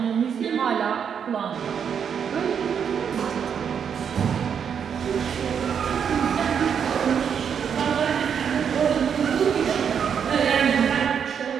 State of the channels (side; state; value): left; quieter; 7.5 dB